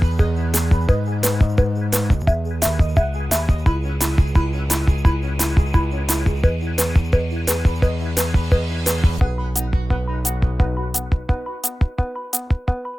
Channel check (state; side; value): normal; both; correlation 0.96